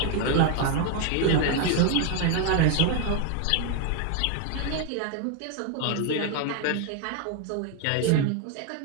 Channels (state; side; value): different; both; correlation 0.01